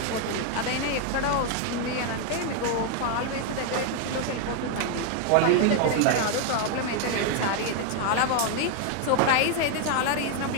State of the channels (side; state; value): both; different; correlation 0.01